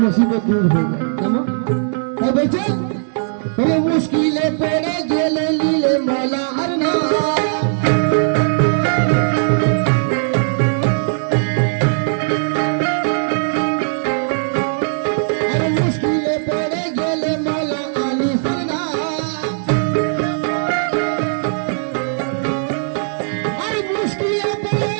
মুসিবত দূর হয়ে যায়। কেমন বলছে মুশকিলে পড়ে গেলে লীলে মৌলা আর না, মুশকিলে পড়ে গেলে মৌলা আলী সরনা, আর মুশকিলে পড়ে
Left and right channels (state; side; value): silent; left; digital silence